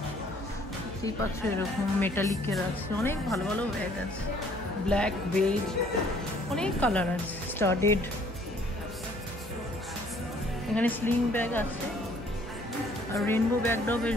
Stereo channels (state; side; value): normal; both; correlation 0.60